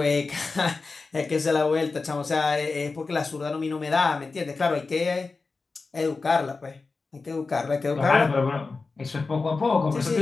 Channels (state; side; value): quieter; right; 4.1 dB